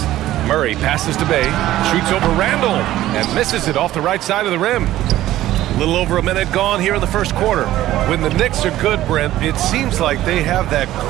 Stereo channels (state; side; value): quieter; left; 14.5 dB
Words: Murray passes to Bay, shoots over Randall, and misses it off the right side of the rim. A little over a minute gone here in the first quarter. When the Knicks are good, Brent, it seems like they have that